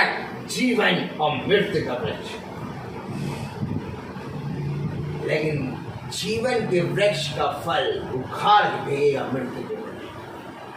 जीवन और मृत्यु का वृक्ष। लेकिन जीवन के वृक्ष का फल उखाड़ के भेजेगा मृत्यु के वृक्ष।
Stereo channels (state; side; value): identical; both; correlation 1.00